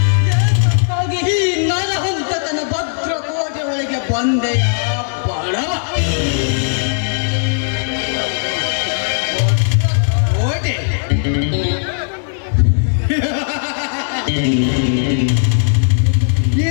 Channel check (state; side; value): silent; right; digital silence